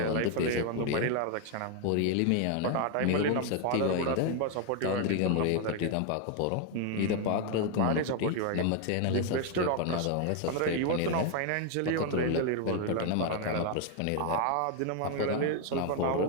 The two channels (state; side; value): different; both; correlation 0.01